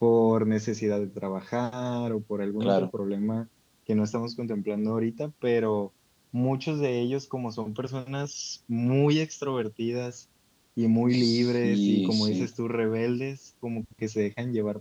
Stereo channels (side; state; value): both; identical; correlation 1.00